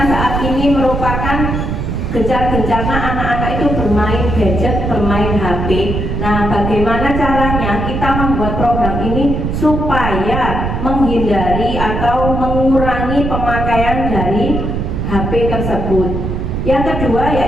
saat ini merupakan gencar-gencarnya anak-anak itu bermain gadget, bermain HP. Nah, bagaimana caranya kita membuat program ini supaya menghindari atau mengurangi pemakaian dari HP tersebut. Yang kedua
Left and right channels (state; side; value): noise; right; rumble, 2 dB below the sound